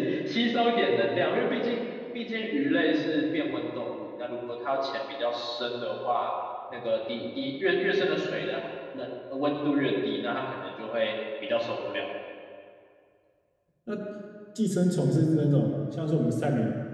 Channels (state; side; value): identical; both; correlation 1.00